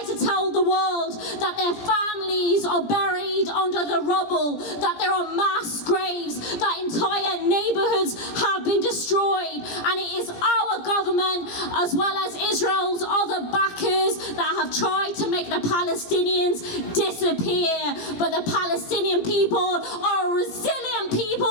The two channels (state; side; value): late; right; 17 ms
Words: to tell the world that their families are buried under the rubble, that there are mass graves, that entire neighborhoods have been destroyed, and it is our government as well as Israel's other backers that have tried to make the Palestinians disappear. But the Palestinian people are a resilient